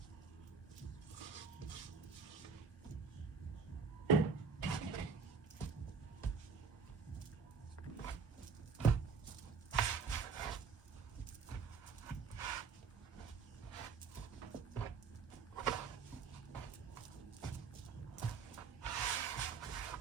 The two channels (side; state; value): left; quieter; 5.4 dB